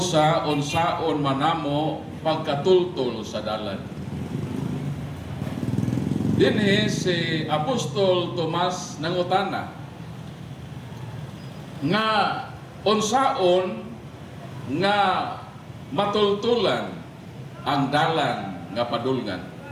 unsaon manamo pagkatultol sa dalan. Dinhi si Apostol Tomas nangutana nga unsaon nga matultulan ang dalan nga padulngan.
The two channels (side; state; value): both; identical; correlation 1.00